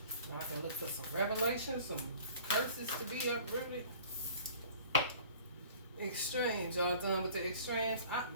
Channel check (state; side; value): inverted; both; correlation -0.49